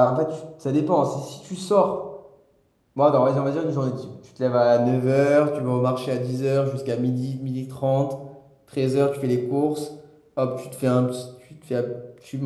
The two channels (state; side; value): identical; both; correlation 1.00